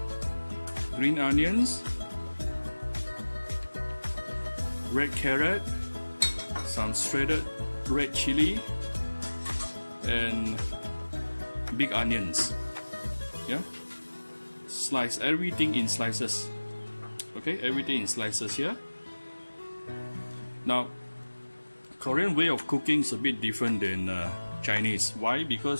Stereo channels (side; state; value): both; inverted; correlation -1.00